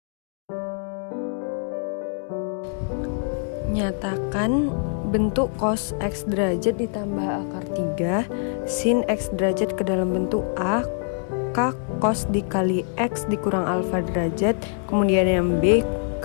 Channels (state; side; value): silent; right; 62 dB below the other